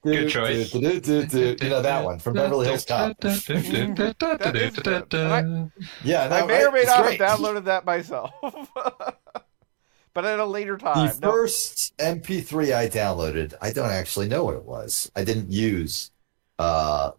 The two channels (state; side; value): silent; left; digital silence